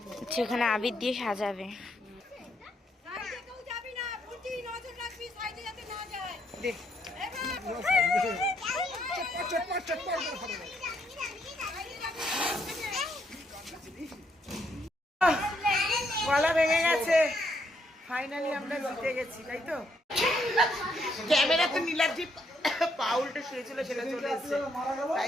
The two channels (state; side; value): normal; both; correlation 0.74